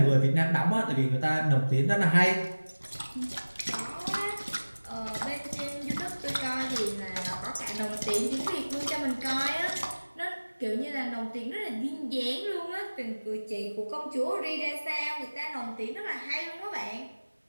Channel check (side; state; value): both; inverted; correlation -1.00